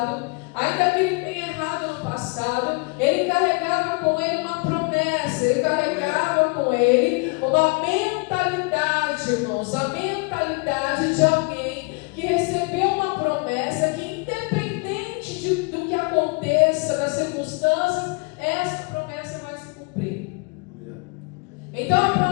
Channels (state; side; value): quieter; right; 30.8 dB